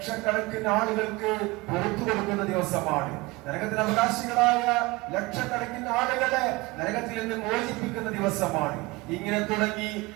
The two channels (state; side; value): quieter; left; 22.6 dB